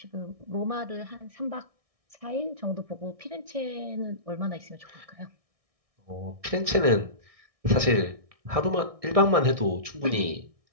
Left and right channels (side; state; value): left; late; 1.6 ms